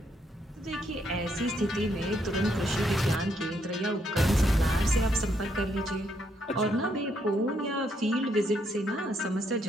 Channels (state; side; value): normal; both; correlation 0.74